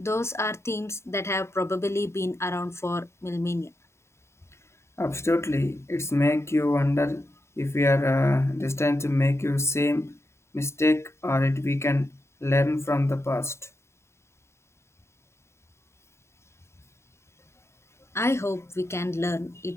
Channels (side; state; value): right; late; 0.13 ms